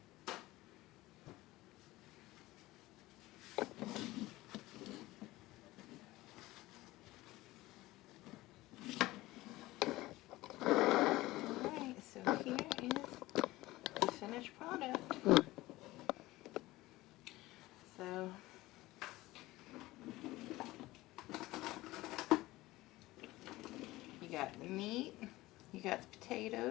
Alright, so here is the finished product. So you got the meat, you got the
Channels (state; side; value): quieter; right; 18.5 dB